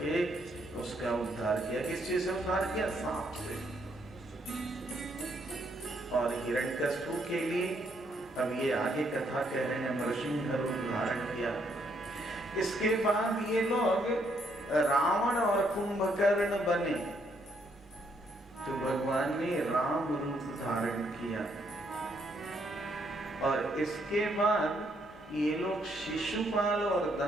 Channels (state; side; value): normal; both; correlation 0.72